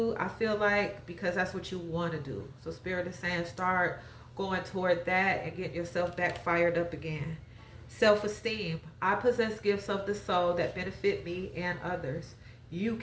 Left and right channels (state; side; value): identical; both; correlation 1.00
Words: I feel like, because that's what you want to do. So Spirit is saying start going toward that and get yourself back fired up again. Self-esteem. I possess gifts of the soul that benefit me and others. You